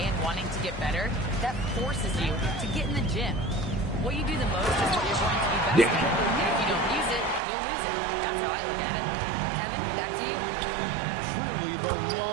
and wanting to get better, that forces you to get in the gym. What you do the most is what you're going to be best at. And if you don't use it, you'll lose it. That's how I look at it. Kevin, back to you. Truly the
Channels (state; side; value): drops out; left; at 7.4 s